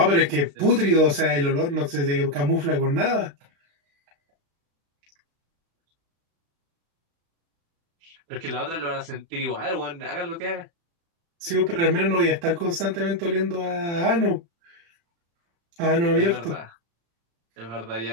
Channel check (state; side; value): late; left; 35 ms